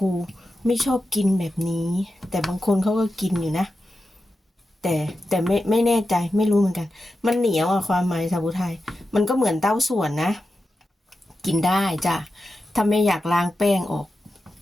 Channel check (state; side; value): normal; both; correlation 0.91